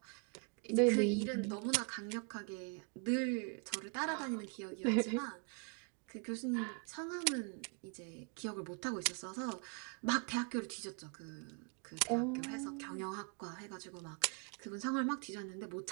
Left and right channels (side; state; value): left; quieter; 37.2 dB